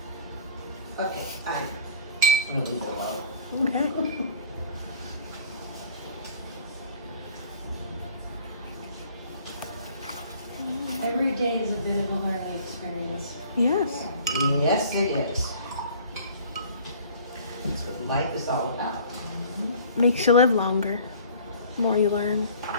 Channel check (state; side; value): inverted; both; correlation -0.49